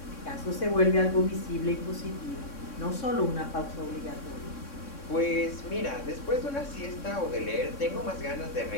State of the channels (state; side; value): late; right; 3.6 ms